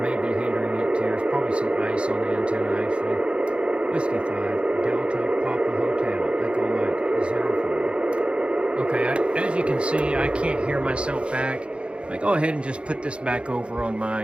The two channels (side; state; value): left; late; 0.058 ms